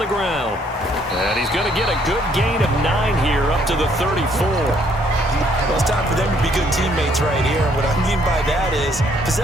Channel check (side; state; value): both; normal; correlation 0.66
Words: ground. And he's going to get a good gain of 9 here up to the 34. Well, it's time for them to be good teammates right here. And what I mean by that is